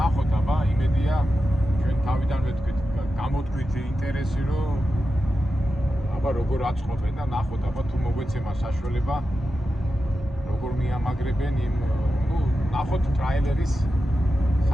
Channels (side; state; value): both; normal; correlation 0.91